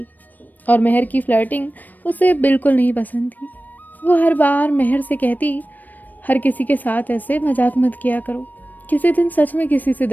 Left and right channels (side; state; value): right; late; 0.086 ms